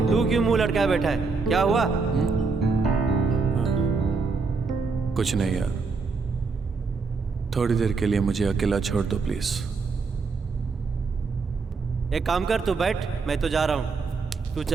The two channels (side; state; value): left; quieter; 4.5 dB